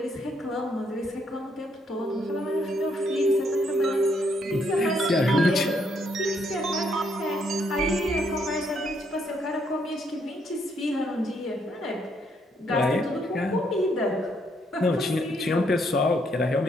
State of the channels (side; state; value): both; normal; correlation 0.72